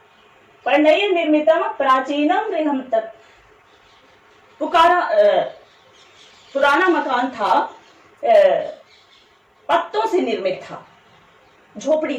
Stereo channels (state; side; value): identical; both; correlation 1.00